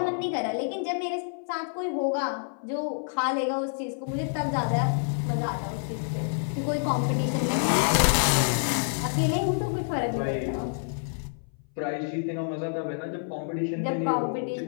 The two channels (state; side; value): silent; right; 58 dB below the other